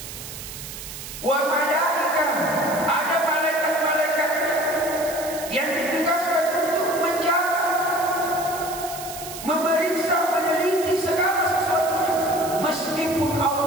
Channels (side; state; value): right; noise; hiss, 11 dB below the sound